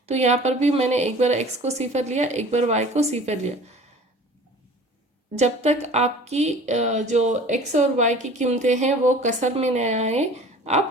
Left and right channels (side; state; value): both; normal; correlation 0.44